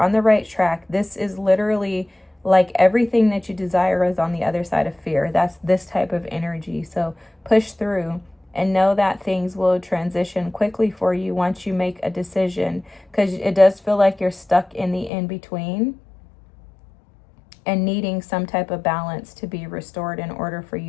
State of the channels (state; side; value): drops out; right; at 15.1 s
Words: the right track. This is literally like everything that you desire is on the other side of fear. That's this type of energy. So push through and know that things will transition quickly for you once you make a decision, because it does feel like you're stuck in the in-between. and needing some type of balance to be restored in order for